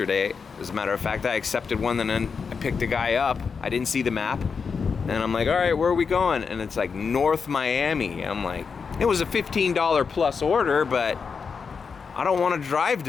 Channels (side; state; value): right; quieter; 5.6 dB